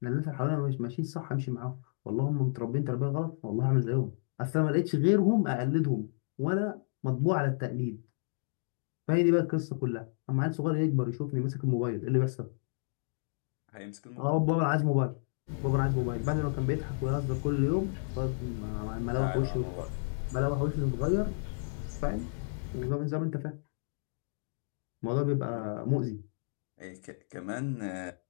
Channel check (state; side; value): silent; right; digital silence